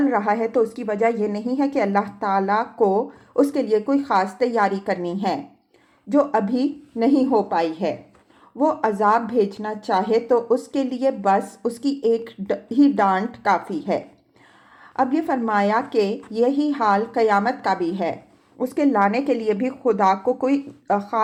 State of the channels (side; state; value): both; identical; correlation 1.00